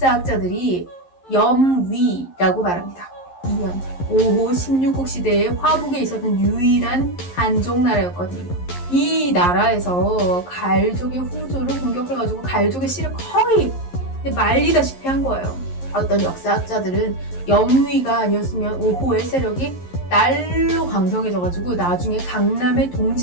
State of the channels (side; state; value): right; late; 11 ms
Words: 염위라고 말합니다. 2년 5호 16국 시대에 화북에 있었던 유일한 한족 나라였거든요. 이 나라에서 갈족의 후조를 공격해가지고 갈족의 씨를 거의 말리다시피 한 거예요. 어떤 역사학자들은 염위가 아니었으면 5호의 세력이 날로 강성해져가지고 나중에 강남의